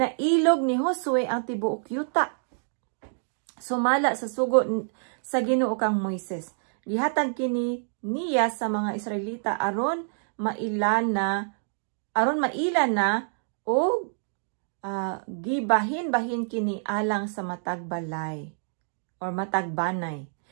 ni Josue ang tibuok yuta. Sumala sa sugo sa Ginoo kang Moises. Gihatag kini niya sa mga Israelita aron maila na o gibahin-bahin kini alang sa matag balay or matag banay.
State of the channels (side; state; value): left; silent; digital silence